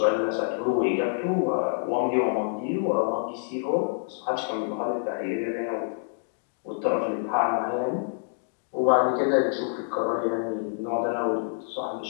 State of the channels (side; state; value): right; silent; digital silence